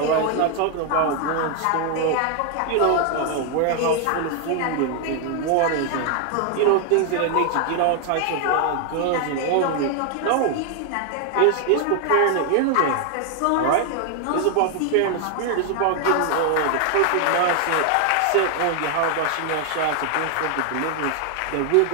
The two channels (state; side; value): different; both; correlation 0.00